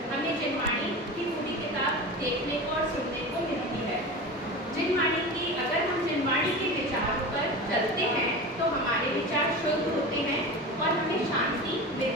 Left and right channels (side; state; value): both; normal; correlation 0.30